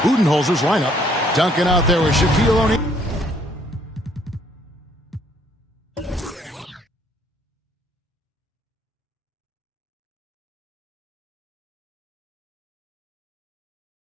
Budenholzer's lineup. Duncan out there with Shaquille O'Neal.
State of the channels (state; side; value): normal; both; correlation 0.65